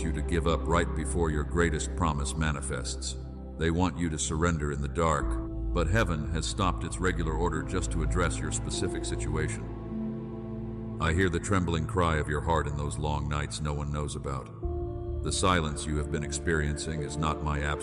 to give up right before your greatest promise manifests. They want you to surrender in the dark, but heaven has stopped its regular order just to address your specific situation. I hear the trembling cry of your heart in those long nights no one knows about. The silence you have been experiencing is not my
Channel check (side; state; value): both; identical; correlation 1.00